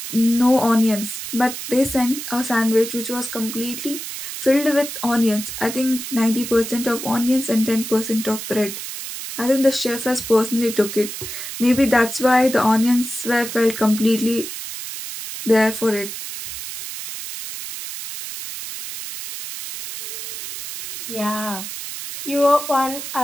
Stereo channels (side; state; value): right; noise; hiss, 8 dB below the sound